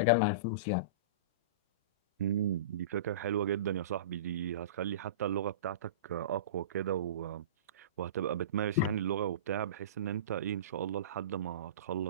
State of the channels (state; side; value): inverted; both; correlation -0.31